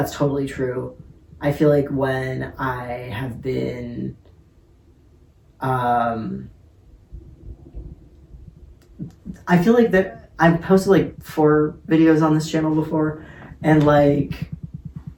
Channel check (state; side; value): identical; both; correlation 1.00